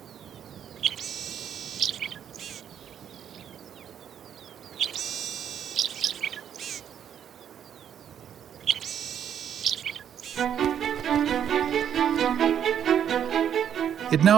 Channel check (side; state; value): left; quieter; 9.1 dB